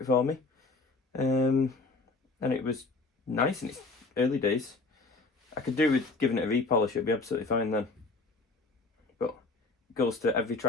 for me, and it was nice in its early days. I could do with giving it a repolish, it'd be absolutely fine then. But it goes to every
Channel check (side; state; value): right; quieter; 3.5 dB